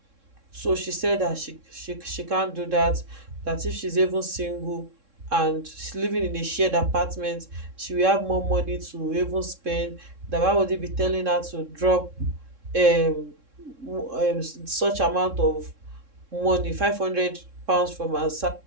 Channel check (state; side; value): late; left; 3.7 ms